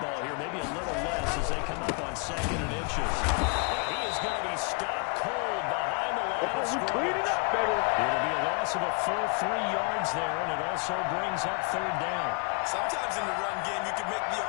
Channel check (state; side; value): quieter; right; 34.7 dB